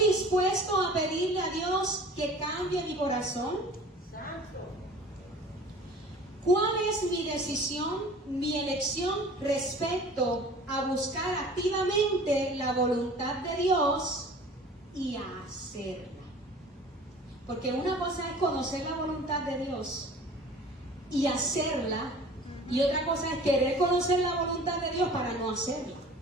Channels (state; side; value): normal; both; correlation 0.45